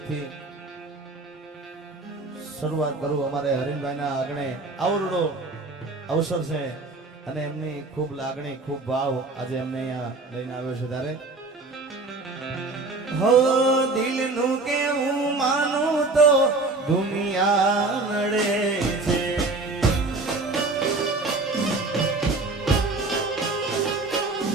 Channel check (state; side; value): quieter; left; 3.4 dB